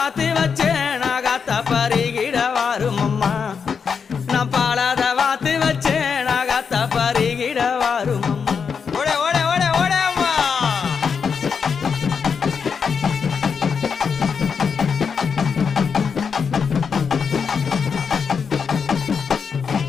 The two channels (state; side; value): quieter; right; 6.2 dB